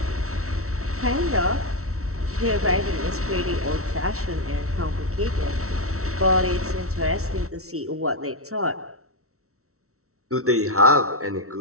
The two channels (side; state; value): left; late; 0.63 ms